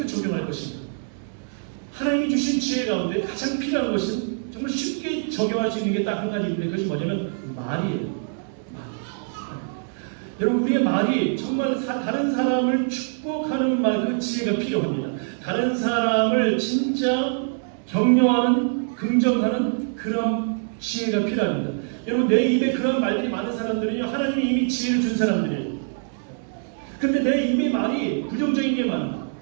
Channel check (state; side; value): silent; left; digital silence